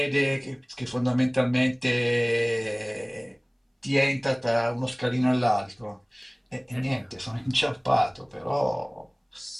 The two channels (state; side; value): identical; both; correlation 1.00